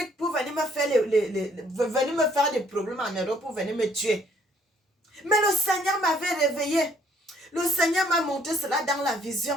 pour venir me faire venir me faire des problèmes en Europe pour venir me tuer. Mais le Seigneur m'avait réveillé. Le Seigneur m'a montré cela dans la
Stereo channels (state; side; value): normal; both; correlation 0.64